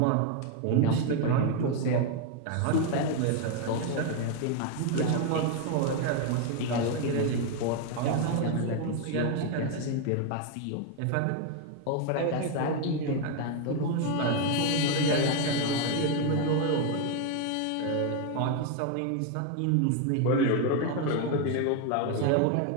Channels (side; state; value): both; different; correlation 0.01